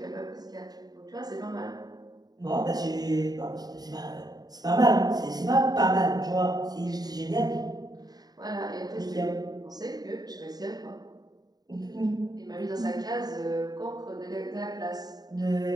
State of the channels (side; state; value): left; late; 0.19 ms